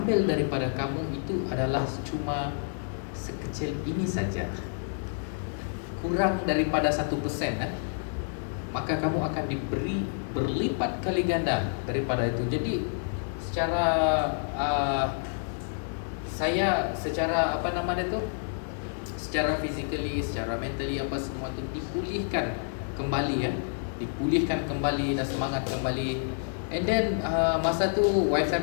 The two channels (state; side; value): silent; right; digital silence